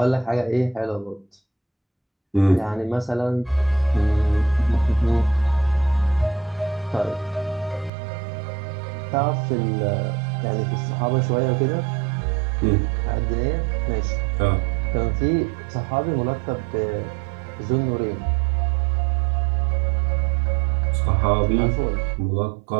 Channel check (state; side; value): drops out; left; at 7.9 s